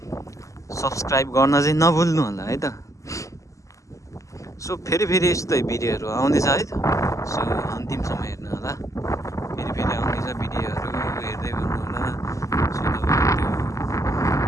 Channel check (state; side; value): late; right; 0.16 ms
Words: सब्सक्राइब गर्न चाहिँ नभुल्नु होला है त। सो फेरि यस्तै भिडियोहरू आउँदैछ है त। सो अन्तिमसम्म हेर्नु होला। फेरि आउँदैछ भिडियोहरू, हेर्दै गर्नु होला। सो तपाईँहरू